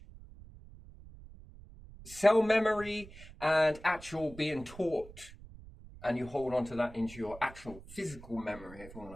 Cell memory and actual being taught. And you hold on to that into your actual physical memory, if you want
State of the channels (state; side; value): noise; right; rumble, 18 dB below the sound